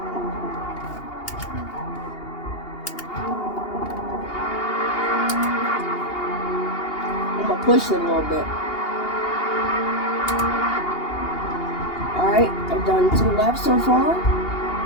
I'm gonna push it a little bit. Alright, I've done 2 laps so far.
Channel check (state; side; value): late; right; 2.8 ms